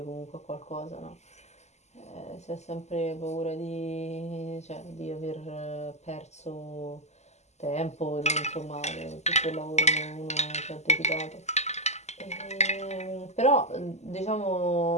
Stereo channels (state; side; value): late; right; 0.33 ms